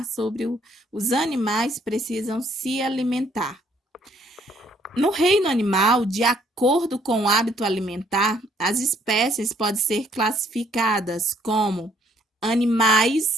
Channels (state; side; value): normal; both; correlation 0.64